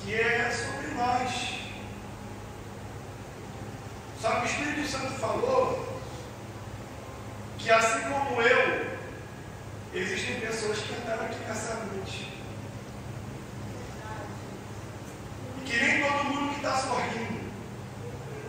que é sobre nós. Só que o Espírito Santo falou que assim como eu, existem pessoas que entraram aqui nessa noite. E que nem todo mundo que está sorrindo,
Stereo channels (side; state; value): both; identical; correlation 1.00